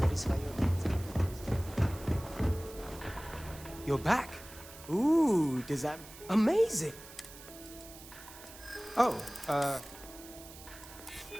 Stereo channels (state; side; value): noise; right; hiss, 17 dB below the sound